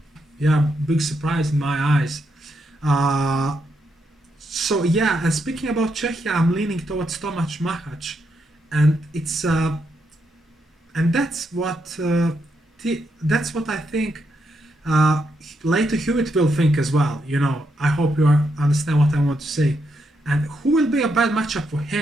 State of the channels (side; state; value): both; normal; correlation 0.80